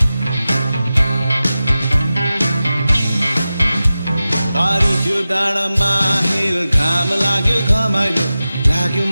पारी त्यो डाँडामा हिल घाम लाग्यो घमाइलो लाग्यो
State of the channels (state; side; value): inverted; both; correlation -0.94